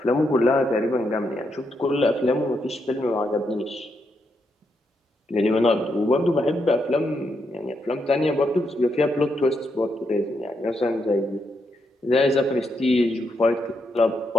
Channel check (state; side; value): normal; both; correlation 0.81